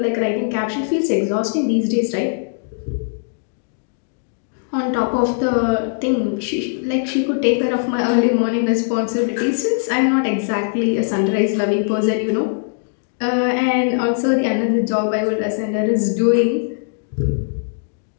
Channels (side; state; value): right; silent; digital silence